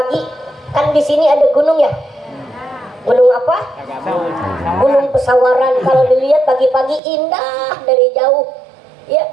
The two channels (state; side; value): drops out; left; at 7.0 s